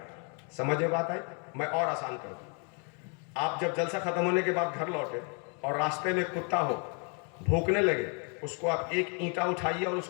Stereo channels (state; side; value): quieter; right; 37.3 dB